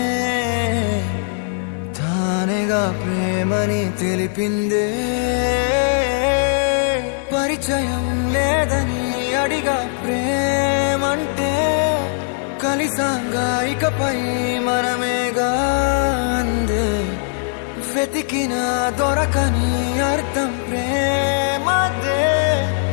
తానేగా ప్రేమని తెలిపిందే. పరిచయం లేదని అడిగా ప్రేమంటే, కలిసాంగా ఇకపై మనమేగా అందే. వెతికిన దొరకని అర్థం ప్రేమదే,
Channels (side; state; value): right; silent; 66 dB below the other